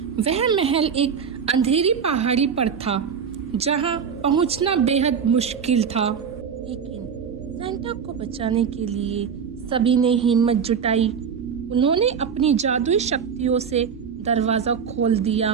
वह महल एक अंधेरी पहाड़ी पर था जहां पहुंचना बेहद मुश्किल था। लेकिन सेंटा को बचाने के लिए सभी ने हिम्मत जुटाई। उन्होंने अपनी जादुई शक्तियों से दरवाजा खोल दिया।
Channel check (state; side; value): quieter; left; 6.9 dB